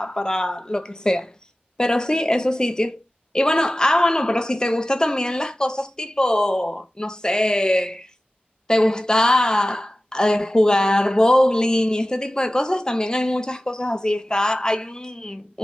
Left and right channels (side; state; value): both; normal; correlation 0.96